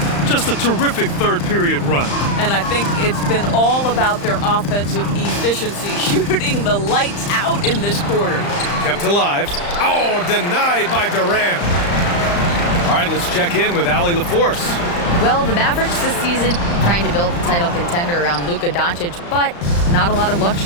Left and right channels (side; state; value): right; late; 35 ms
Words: Just a terrific 3rd period run. And I think it's been all about their offensive efficiency, shooting the lights out in this quarter. Kept alive. Oh, denied by Durant. All right, let's check in with Allie LaForce. Well, the Mavericks this season trying to build a title contender around Luka Doncic, but not a lot of